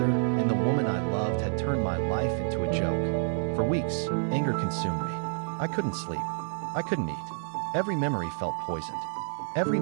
and the woman I loved had turned my life into a joke. For weeks, anger consumed me. I couldn't sleep. I couldn't eat. Every memory felt poisoned. Every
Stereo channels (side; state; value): left; silent; digital silence